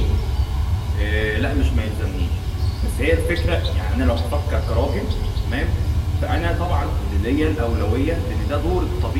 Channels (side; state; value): both; identical; correlation 1.00